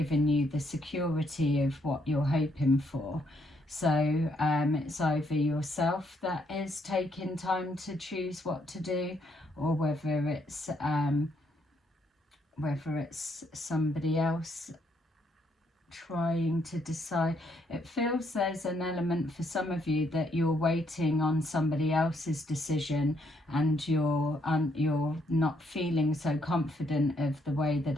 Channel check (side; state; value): both; normal; correlation 0.73